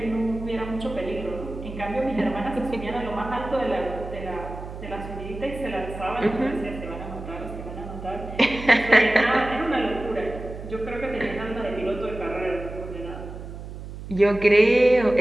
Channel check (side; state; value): right; noise; hum, 11 dB below the sound